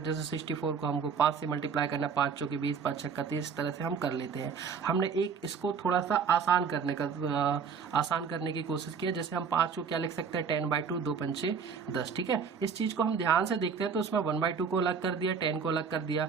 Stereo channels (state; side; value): quieter; left; 6.1 dB